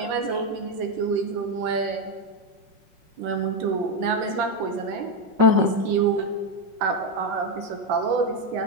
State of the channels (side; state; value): left; late; 5.8 ms